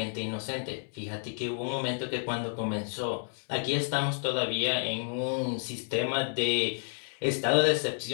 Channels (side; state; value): right; silent; digital silence